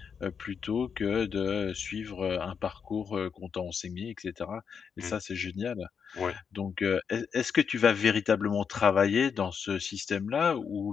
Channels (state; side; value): quieter; right; 6.6 dB